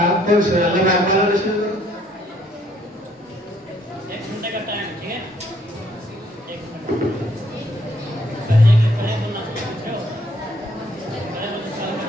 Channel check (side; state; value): both; normal; correlation 0.66